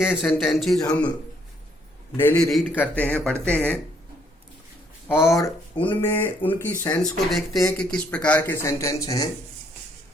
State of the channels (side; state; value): both; normal; correlation 0.68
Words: सेंटेंसेस हम डेली रीड करते हैं, पढ़ते हैं और उनमें उनकी सेंस को देखते हैं कि किस प्रकार के सेंटेंस हैं।